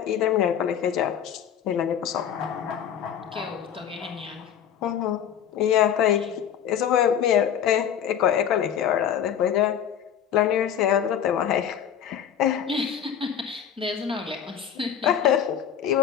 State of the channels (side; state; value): right; quieter; 9.0 dB